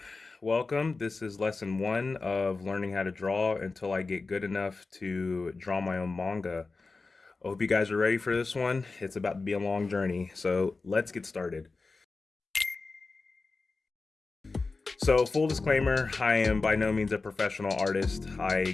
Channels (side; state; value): right; quieter; 3.9 dB